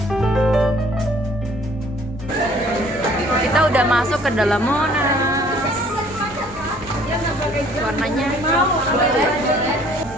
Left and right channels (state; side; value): normal; both; correlation 0.57